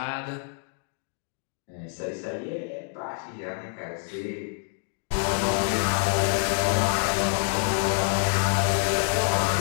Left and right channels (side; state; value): right; silent; 56 dB below the other